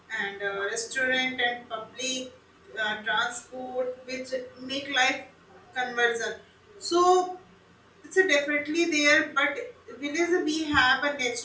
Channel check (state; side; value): identical; both; correlation 1.00